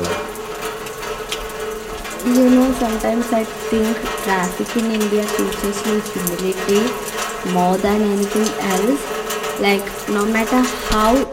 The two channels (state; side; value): identical; both; correlation 1.00